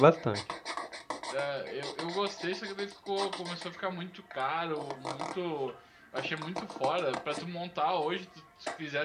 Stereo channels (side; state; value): both; identical; correlation 1.00